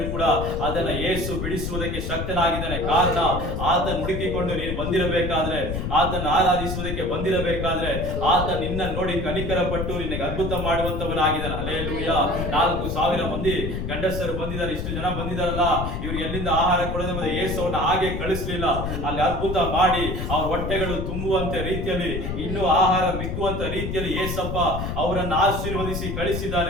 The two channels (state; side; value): noise; left; rumble, 4 dB below the sound